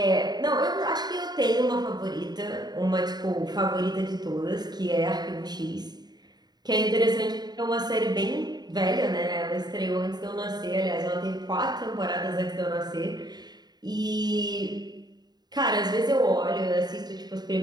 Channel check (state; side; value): late; left; 0.20 ms